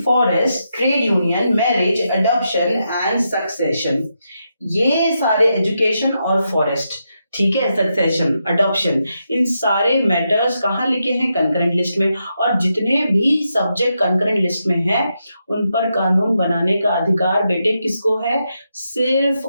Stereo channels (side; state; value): both; inverted; correlation -0.84